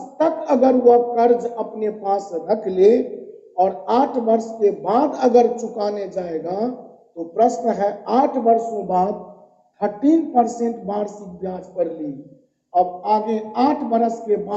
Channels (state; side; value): identical; both; correlation 1.00